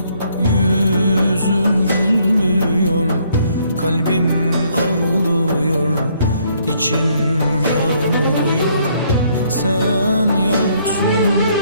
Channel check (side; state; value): both; inverted; correlation -0.68